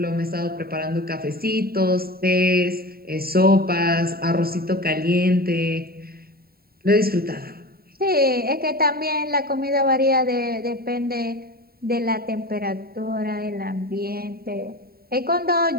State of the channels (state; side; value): late; left; 0.44 ms